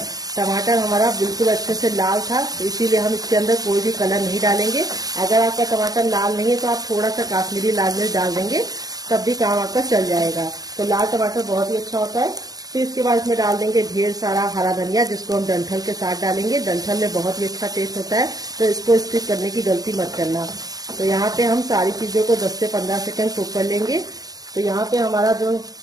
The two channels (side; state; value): left; late; 0.18 ms